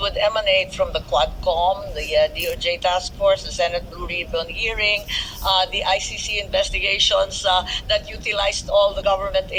emanate from the Quadcom, the DOJ task force, the Senate Blue Ribbon hearing, the ICC investigations that utilized all the government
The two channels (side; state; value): both; identical; correlation 1.00